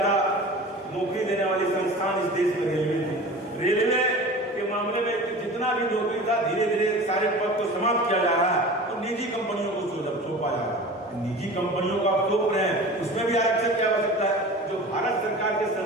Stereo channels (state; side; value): normal; both; correlation 0.37